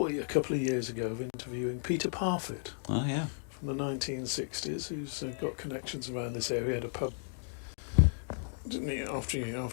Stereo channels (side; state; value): right; silent; digital silence